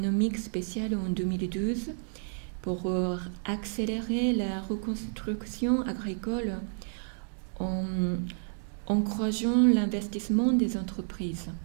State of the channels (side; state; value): left; silent; digital silence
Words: spéciale en 2012 pour accélérer la reconstruction agricole en encourageant l'investissement des entreprises.